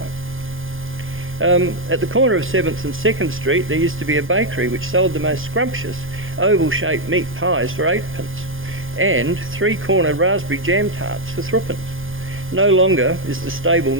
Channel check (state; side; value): late; left; 0.59 ms